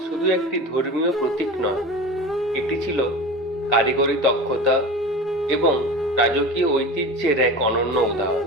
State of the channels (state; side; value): normal; both; correlation 0.32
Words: শুধু একটি ধর্মীয় প্রতীক নয়, এটি ছিল কারিগরি দক্ষতা এবং রাজকীয় ঐতিহ্যের এক অনন্য